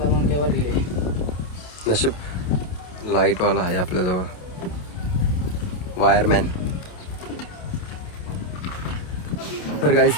नशीब लाईटवाला आहे आपल्याजवळ, वायरमॅन. तर गाईज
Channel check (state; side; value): late; right; 28 ms